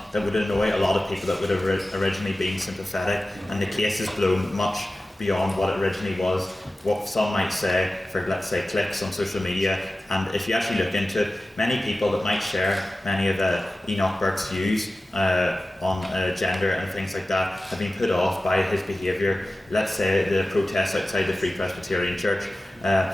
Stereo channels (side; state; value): both; normal; correlation 0.95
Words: that would annoy a lot of people that would have originally been sympathetic, and the case has blown much beyond what it originally was, what some might say for, let's say, clicks on social media. And if you actually look into it, many people that might share many of Enoch Burke's views on gender and things like that have been put off by his behaviour. Let's say the protests outside the Free Presbyterian Church,